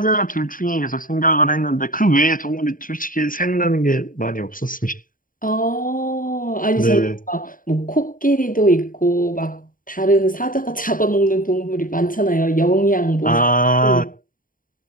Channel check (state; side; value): late; right; 0.40 ms